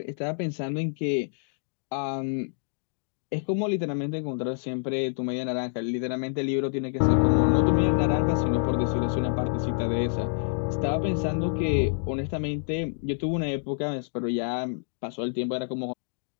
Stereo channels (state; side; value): silent; right; digital silence